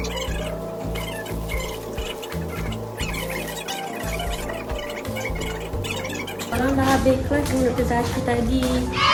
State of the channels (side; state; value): both; identical; correlation 1.00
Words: Orang dah habis kelas dengan Dr. Zaki tadi.